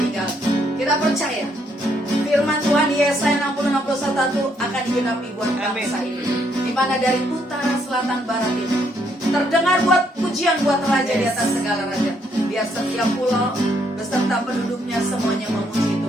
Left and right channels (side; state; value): both; normal; correlation 0.71